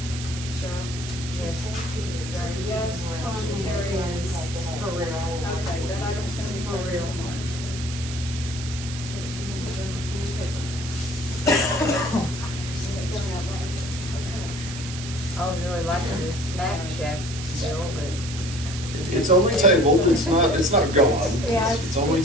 Cheryl? Yes. Gary, yes. Motion carries. For real. Okay, that item's gonna be for real, March. I was really liking this snack shack deal, but. It's only tabled, it's not gone. Yeah, It's only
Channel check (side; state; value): right; noise; hiss, 10 dB below the sound